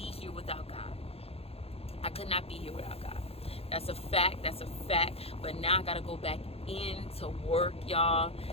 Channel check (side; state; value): right; late; 0.29 ms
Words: here without God. I could not be here without God. That's a fact. That's a fact. But now I got to go back into work, y'all.